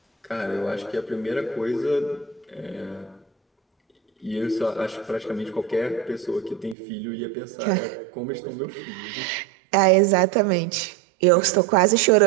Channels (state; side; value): drops out; left; at 6.8 s